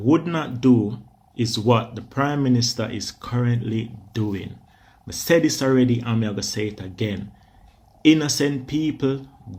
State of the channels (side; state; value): both; identical; correlation 1.00